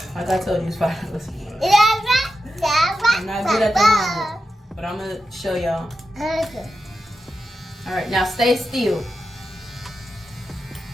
like I told you, it's $5. I'm not good at the lineup, but I'm gonna show y'all. Alright, now stay still.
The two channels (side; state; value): both; normal; correlation 0.90